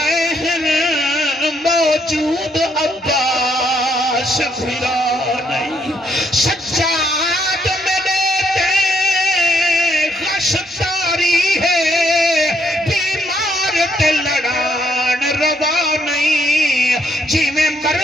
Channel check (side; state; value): both; normal; correlation 0.72